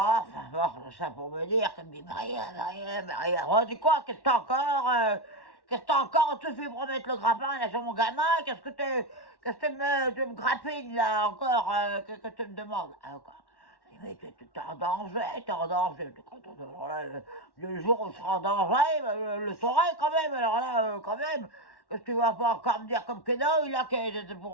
bon, ça pour me dire qu'elle me dit, Maria, oh, dis quoi, qu'est-ce que t'as encore, tu fais pour mettre le grappin là sur mon gamin, qu'est-ce que tu me grappines là encore, que tu me demandes, encore. Mais t'es en danger, Alors là, le jour où je serai en danger, le saurai quand même, alors là, quand même. Qu'est-ce que tu vas pas encore me dire comme Keno, il a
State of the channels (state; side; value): late; right; 1.1 ms